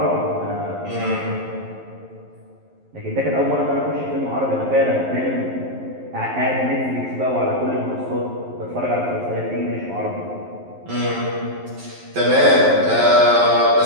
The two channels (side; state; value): left; late; 11 ms